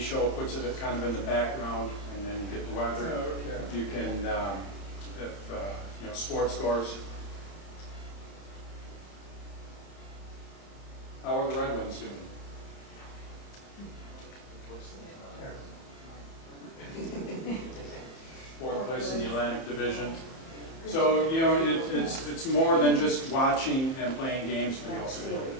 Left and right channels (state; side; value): late; right; 30 ms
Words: it puts it kind of in the background, and then you get the weather. Okay. You can, sports scores. How are the Red Wings doing? Fourth place in the Atlantic Division. So, it's more than just watching and playing games, but you also get a bit